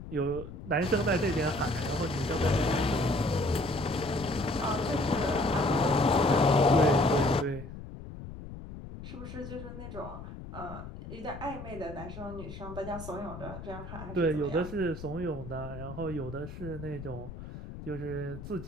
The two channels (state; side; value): noise; left; rumble, 11 dB below the sound